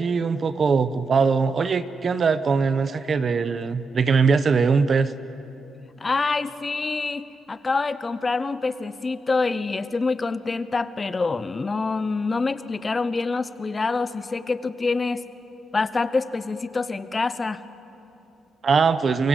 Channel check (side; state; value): both; normal; correlation 0.86